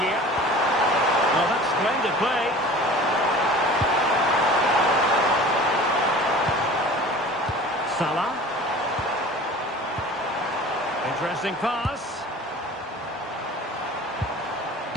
Well, that's splendid play. Salah. Interesting pass.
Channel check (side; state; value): both; normal; correlation 0.42